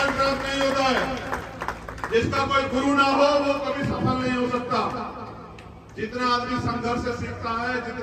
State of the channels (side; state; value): both; identical; correlation 1.00